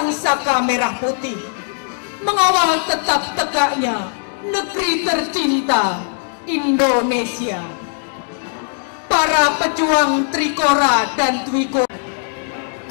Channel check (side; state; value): right; silent; digital silence